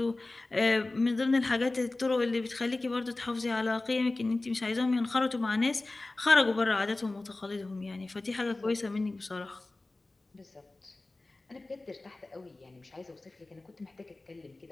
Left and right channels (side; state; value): right; quieter; 3.0 dB